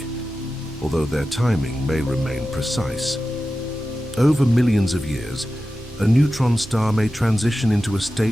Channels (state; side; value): normal; both; correlation 0.93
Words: although their timing may remain precise. Over millions of years, a neutron star may transition into a